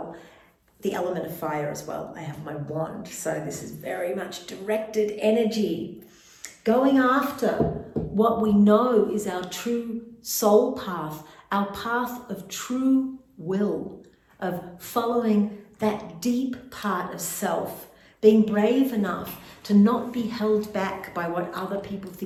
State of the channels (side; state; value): both; identical; correlation 1.00